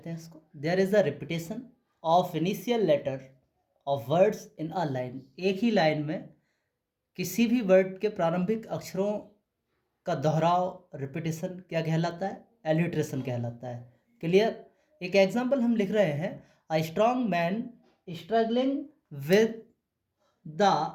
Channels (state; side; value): identical; both; correlation 1.00